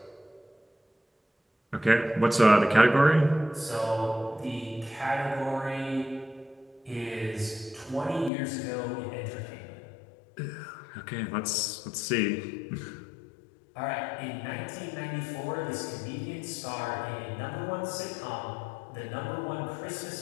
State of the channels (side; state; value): right; drops out; at 8.3 s